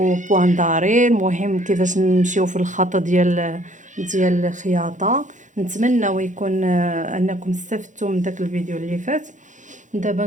داري. المهم كيفاش نمشيو في الخط ديال الخياطه. نتمنى ويكون انكم استفدتوا من داك الفيديو اللي فات. دابا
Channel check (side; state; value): left; late; 0.36 ms